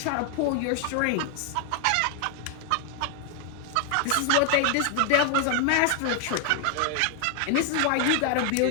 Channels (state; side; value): different; both; correlation 0.00